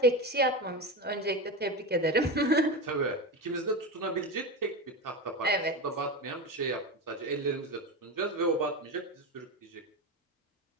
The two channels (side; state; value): both; normal; correlation 0.21